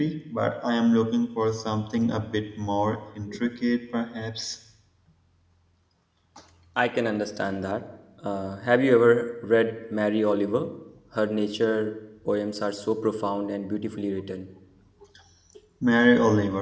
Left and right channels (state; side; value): identical; both; correlation 1.00